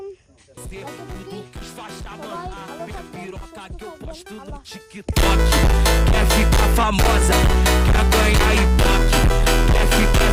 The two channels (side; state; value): both; identical; correlation 1.00